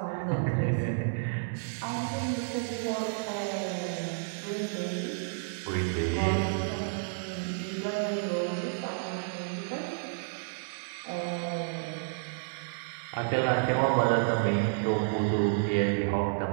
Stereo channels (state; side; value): silent; left; digital silence